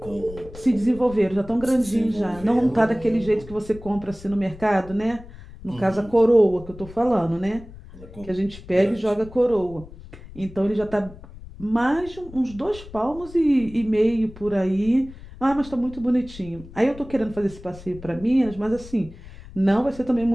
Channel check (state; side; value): noise; left; rumble, 17 dB below the sound